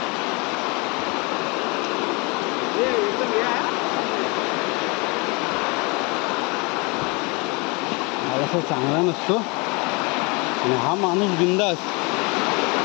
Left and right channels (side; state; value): right; quieter; 29.1 dB